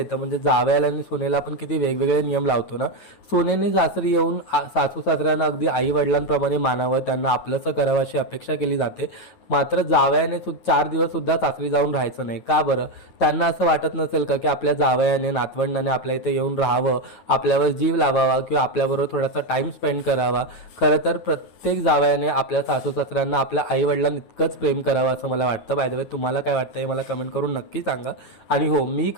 म्हणजे जावयाला आणि सुनेला आपण किती वेगवेगळे नियम लावतो ना. सुनेने सासरी येऊन सासू सासऱ्यांना अगदी आई वडिलांप्रमाणे मानावं, त्यांना आपलंसं करावं अशी अपेक्षा केली जाते. मात्र जावयाने 4 दिवस सुद्धा सासरी जाऊन राहायचं नाही. का बरं? त्यांना असं वाटत नसेल का की आपल्या जावयाने नातवंडाने आपल्या इथे येऊन राहावं, आपल्यावर जीव लावावा किंवा आपल्याबरोबर थोडासा टाइम स्पेंड करावा. खरं तर प्रत्येक जावयाने आपल्या सासू सासऱ्यांना आपल्या आई वडिलांना इतकंच प्रेम करावं असं मला वाटतं. बाय द वे, तुम्हाला काय वाटतं हे मला कमेंट करून नक्की सांगा. आणि हो, मी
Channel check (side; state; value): right; late; 9.1 ms